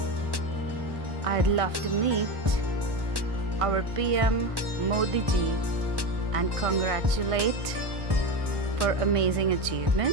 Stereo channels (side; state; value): left; late; 1.1 ms